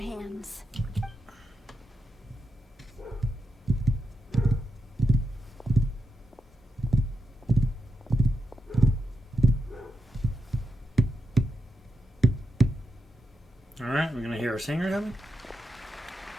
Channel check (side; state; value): both; normal; correlation 0.85